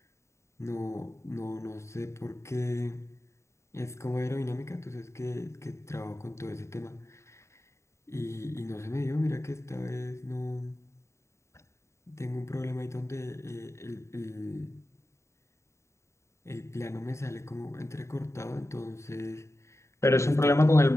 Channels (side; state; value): right; late; 0.14 ms